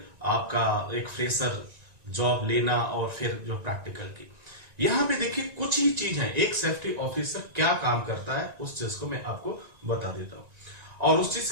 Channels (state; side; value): late; left; 1.9 ms